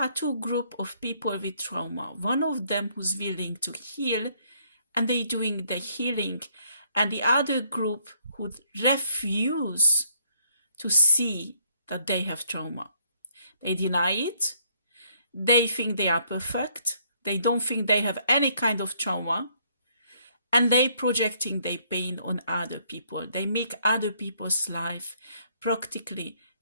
two groups of people with trauma. One of them who's willing to heal and they doing the healing, and the other group who refuse to see that they have trauma. They deny it. They think they are perfect. They don't think they have any kind of trauma. And they projecting their pain on other people. They make other people's life practically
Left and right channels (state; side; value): inverted; both; correlation -0.68